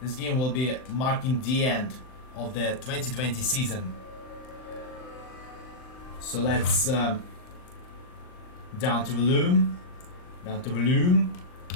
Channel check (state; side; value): late; right; 39 ms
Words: marking the end of the 2020 season. So let's down to volume on